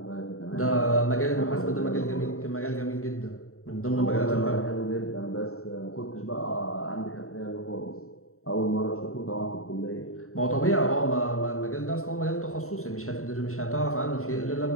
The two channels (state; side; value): late; right; 0.63 ms